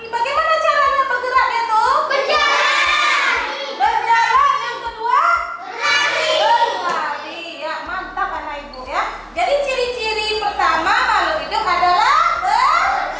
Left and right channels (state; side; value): identical; both; correlation 1.00